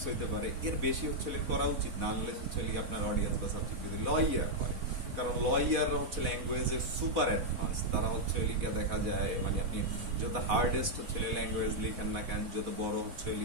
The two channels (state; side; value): late; left; 4.1 ms